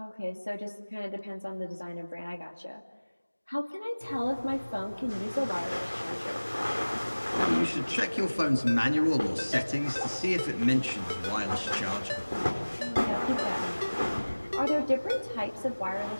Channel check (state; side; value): inverted; both; correlation -1.00